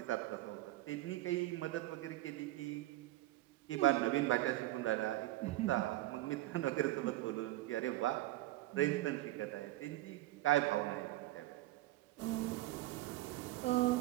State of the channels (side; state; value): left; quieter; 16.6 dB